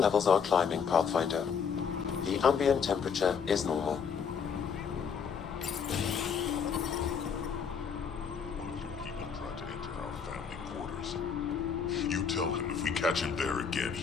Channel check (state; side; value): quieter; right; 6.5 dB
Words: are climbing, Pathfinder. The ambient temperature is normal. People tried to enter our family quarters. You tell him if we catch him there again,